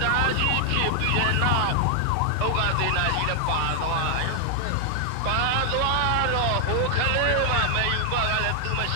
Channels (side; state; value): both; different; correlation 0.00